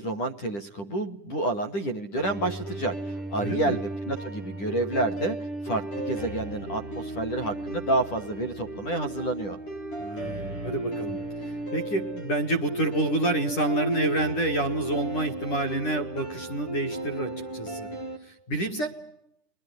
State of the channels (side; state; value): right; late; 10 ms